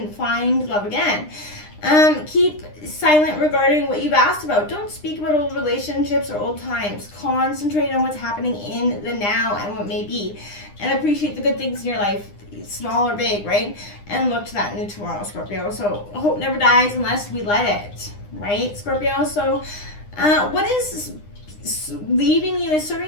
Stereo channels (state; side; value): late; right; 9.8 ms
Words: find love again. Keep silent regarding what you've asked about. Don't speak about old relationships or old times. Concentrate on what's happening in the now and what may be. And appreciate the good things in your life, small or big, right? And look to that new tomorrow, Scorpio. So hope never dies unless we let it, right, Scorpio? So what is leaving you is serving